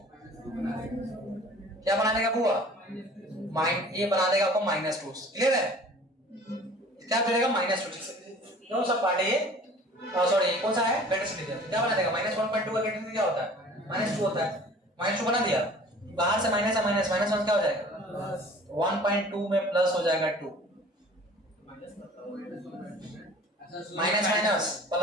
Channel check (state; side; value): normal; both; correlation 0.47